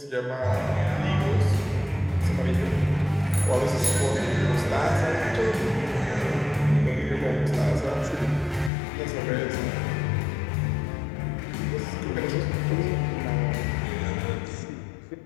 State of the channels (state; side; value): drops out; right; at 8.7 s